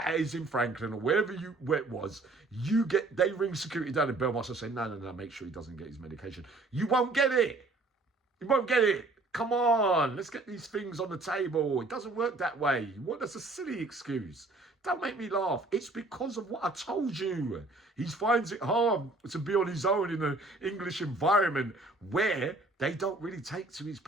A's in Franklin or where it was. They ring security down in Belmarsh and say, no, make sure he doesn't get his medication. You won't get it. You won't get it. Come on, let's get these things on the table. It doesn't work that way. That's a silly excuse. Don't make me laugh. It's because of what I told you. He finds it hard to be on his own in an English environment where they don't really take to his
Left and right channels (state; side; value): quieter; left; 3.1 dB